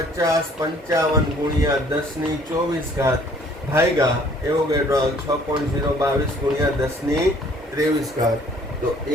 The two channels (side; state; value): both; normal; correlation 0.57